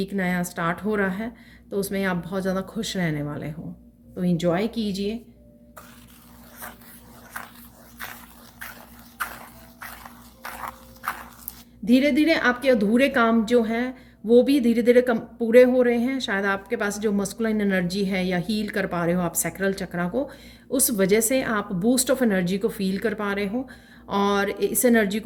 नया स्टार्ट हो रहा है, तो उसमें आप बहुत ज़्यादा खुश रहने वाले हो, तो एंजॉय कीजिए। धीरे धीरे आपके अधूरे काम जो हैं वो भी धीरे धीरे कम पूरे हो रहे हैं। शायद आपके पास जो मस्कुलाइन एनर्जी है या हील कर पा रहे हो आप सैक्रल चक्रा को, उस वजह से आप बूस्ट ऑफ एनर्जी को फील कर पा रहे हो, और इस एनर्जी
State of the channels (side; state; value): both; identical; correlation 1.00